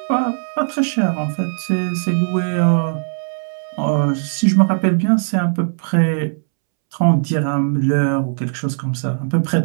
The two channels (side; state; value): left; silent; 67 dB below the other